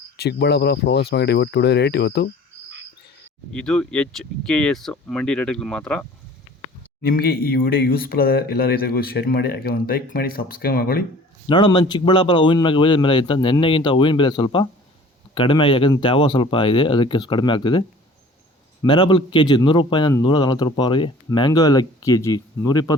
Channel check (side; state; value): both; normal; correlation 0.48